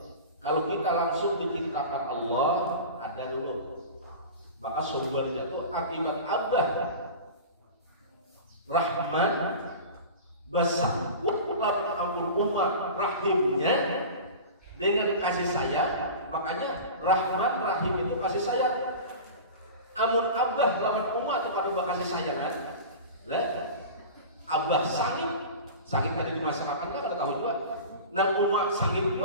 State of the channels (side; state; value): both; inverted; correlation -0.33